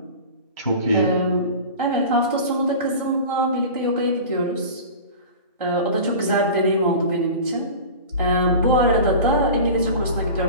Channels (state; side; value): inverted; both; correlation -0.34